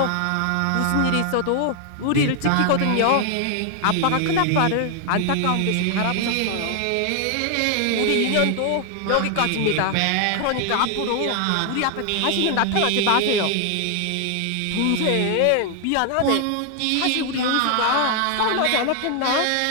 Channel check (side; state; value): both; different; correlation 0.00